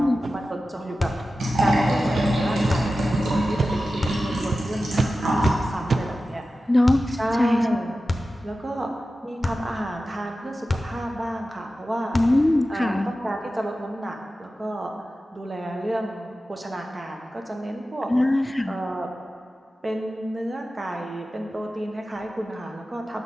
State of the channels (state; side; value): normal; both; correlation 0.94